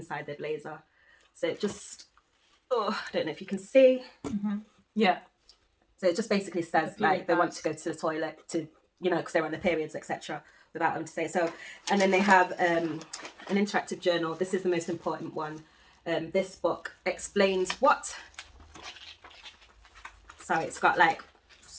their blazer. So it just, I don't know if you can see. Mm-hmm. Yeah. So it just basically says like they want to go to the toilet to, because they're on their periods, etc. Without them to say so. And then they have an interactive journal. This is the most important one. This book explains what. So it's got like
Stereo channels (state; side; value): identical; both; correlation 1.00